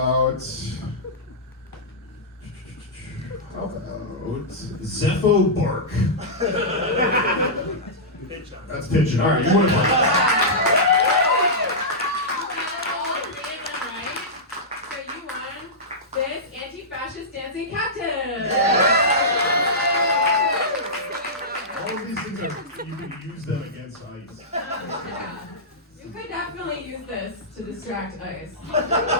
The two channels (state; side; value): normal; both; correlation -0.13